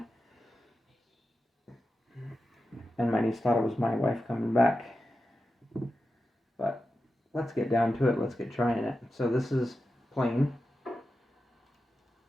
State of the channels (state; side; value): normal; both; correlation 0.91